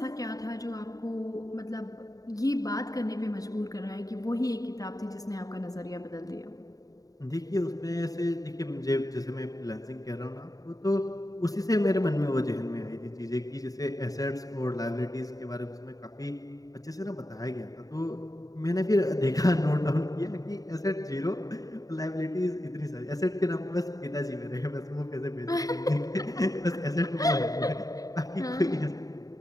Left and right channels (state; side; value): late; right; 0.18 ms